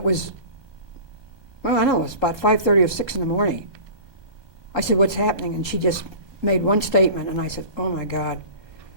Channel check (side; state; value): left; late; 1.2 ms